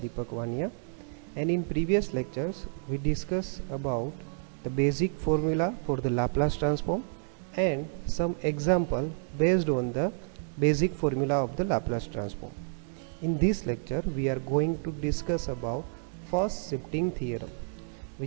Vania, and in previous lectures we discussed about the basic formula for the Laplace transform and some example based on the basic formula of the Laplace transform. In this lecture we are going to discuss about first shifting theorem,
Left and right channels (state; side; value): silent; left; digital silence